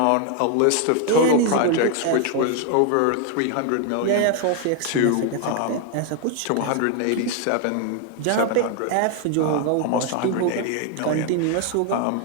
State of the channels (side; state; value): both; different; correlation 0.00